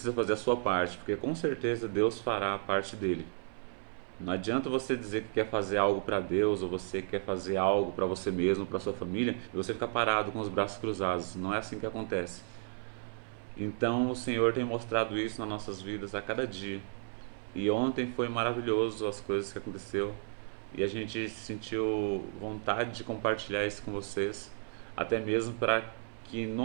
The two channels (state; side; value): silent; left; 56 dB below the other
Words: fazer a sua parte, porque com certeza Deus fará a parte dele. Não adianta você dizer que quer fazer algo para Deus ou você quer fazer algo para você mesmo, para sua família, e você ficar parado com os braços cruzados. Não é assim que acontece. Então o Senhor tem mostrado isso nas nossas vidas a cada dia. E ontem foi maravilhoso as coisas que aconteceu e a gente sentiu vontade de compartilhar isso com vocês, até mesmo para que em